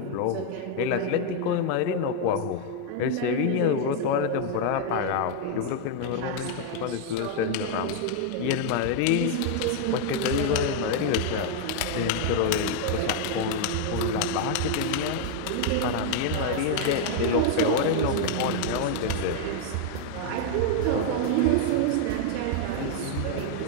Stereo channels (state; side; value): different; both; correlation 0.00